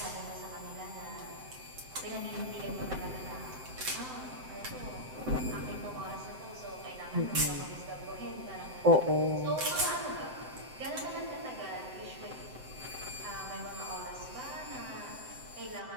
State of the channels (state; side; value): late; left; 7.8 ms